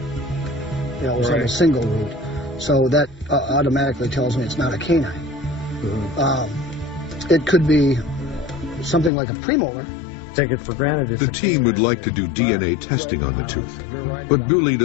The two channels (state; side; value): drops out; right; at 9.1 s